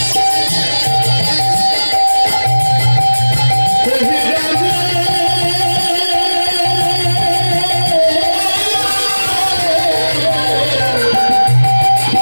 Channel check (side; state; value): both; inverted; correlation -1.00